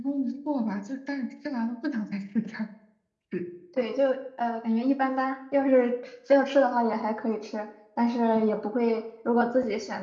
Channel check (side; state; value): both; identical; correlation 1.00